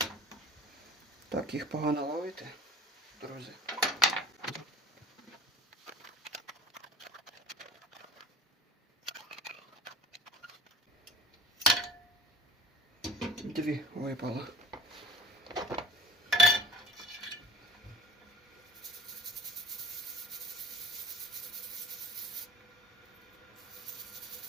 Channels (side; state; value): both; normal; correlation 0.45